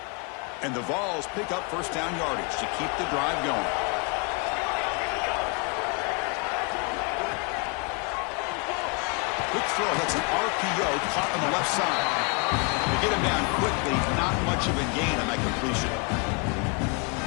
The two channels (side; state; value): right; quieter; 32.8 dB